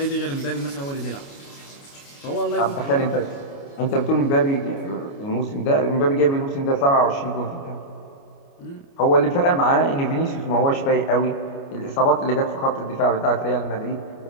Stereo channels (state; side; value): late; right; 29 ms